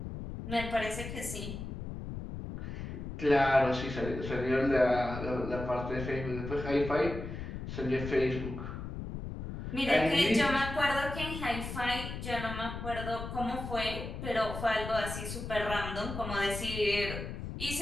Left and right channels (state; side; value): noise; left; rumble, 7 dB below the sound